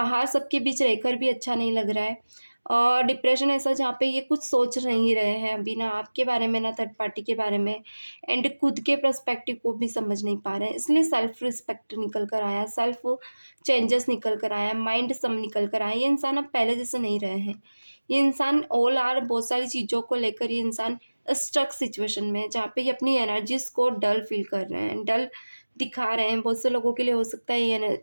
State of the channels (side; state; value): both; inverted; correlation -1.00